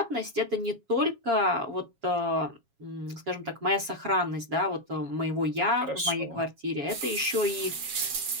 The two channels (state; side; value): late; left; 7.3 ms